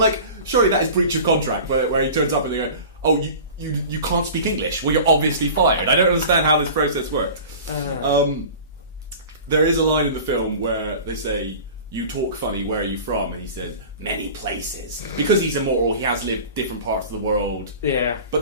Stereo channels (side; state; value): both; inverted; correlation -0.38